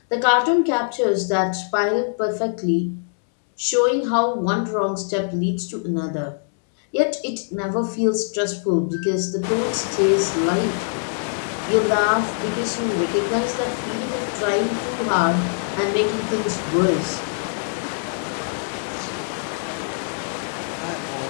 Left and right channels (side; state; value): right; silent; digital silence